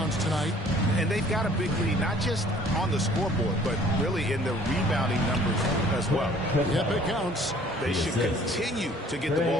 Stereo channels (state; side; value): normal; both; correlation 0.54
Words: tonight. And they've got a big lead, not just on the scoreboard, but really in the rebounding numbers as well. Yep, it counts. They should continue to get the